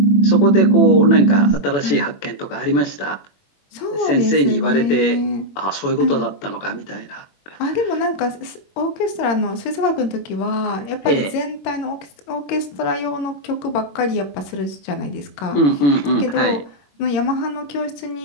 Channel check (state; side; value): late; right; 21 ms